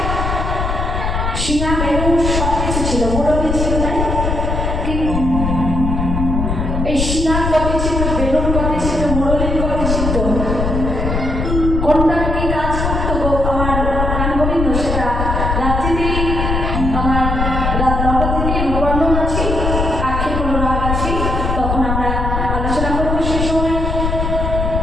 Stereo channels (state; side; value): noise; left; rumble, 1 dB below the sound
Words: সিংহা বেরো সব কিছু ছিল, মুরলি ছিল, তাই কিন্তু এই সিংহার গতি ছিল, বেলুর গতি ছিল, মুরলির গতি ছিল, কোনটা কি কাজ করতো গো আমার গান গোবিন্দ সেটা রাত্রিতেই আমার রাত 9টা থেকে নবান্ন আছি, আখের কোনো রাগ আছি, তখন আমরা আলোচনা করবো সে সময়।